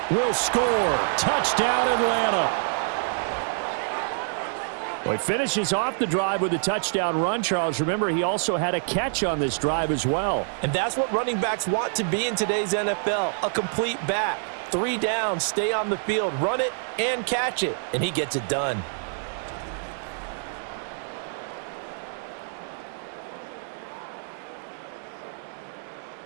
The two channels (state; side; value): silent; left; 61 dB below the other